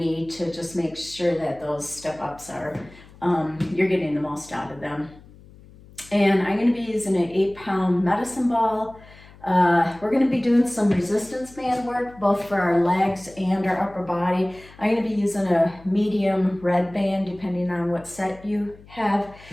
to just make sure that those step ups are you're getting the most out of them. And I'm going to be using an 8-pound medicine ball. We're going to be doing some resistance band work, both for our legs and our upper body. I'm going to be using a medium red band, depending on what set you have,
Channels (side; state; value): left; noise; hum, 22 dB below the sound